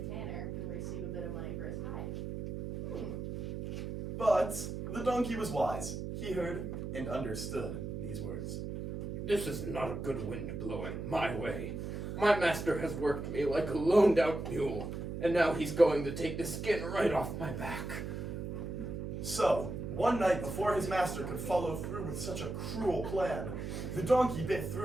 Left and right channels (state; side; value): noise; right; hum, 5 dB below the sound